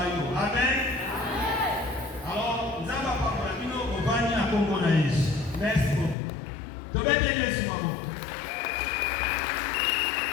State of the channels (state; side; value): drops out; right; at 6.2 s